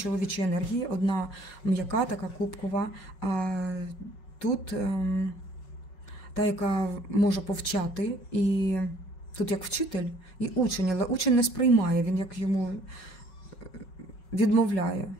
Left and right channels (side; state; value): right; late; 5.4 ms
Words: енергії, одна м'яка, така кубкова, а тут та, яка може повчати, і тут як вчитель і учень, але учень не сприймає, він як йому відмовляє.